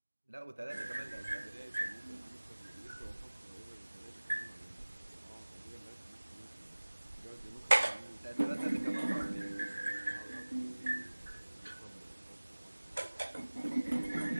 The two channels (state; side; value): inverted; both; correlation -1.00